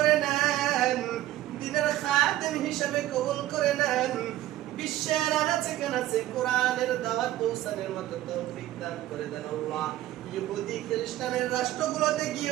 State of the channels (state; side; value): quieter; left; 14.6 dB